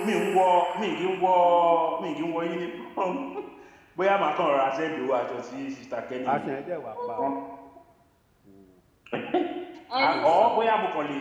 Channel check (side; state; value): both; identical; correlation 1.00